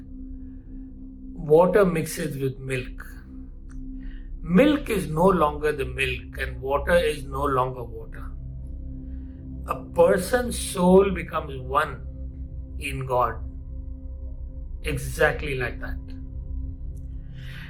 water mixes with milk. Milk is no longer the milk and water is no longer water. A person's soul becomes one in God. Exactly like that.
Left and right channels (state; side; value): identical; both; correlation 1.00